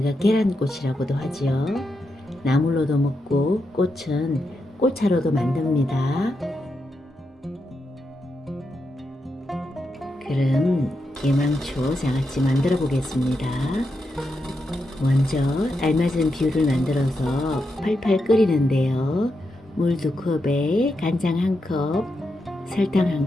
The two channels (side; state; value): both; normal; correlation 0.85